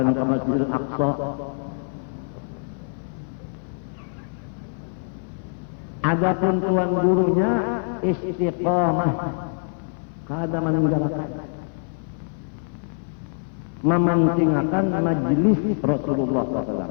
ke Masjidil Aqsa. Adapun tuan gurunya istiqamah, kada meninggalkan, mementingkan majelis Rasulullah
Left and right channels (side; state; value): right; silent; 56 dB below the other